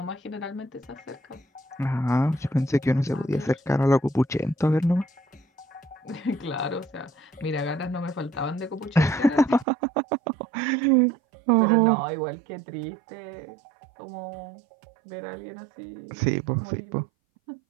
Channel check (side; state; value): left; drops out; at 9.7 s